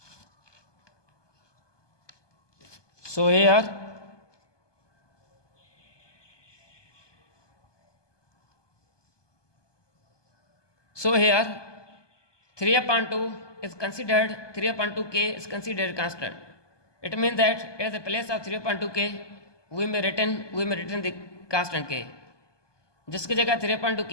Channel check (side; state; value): right; late; 1.2 ms